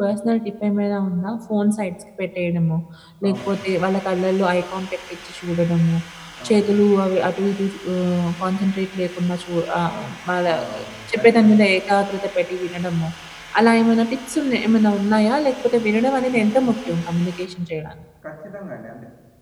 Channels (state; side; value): identical; both; correlation 1.00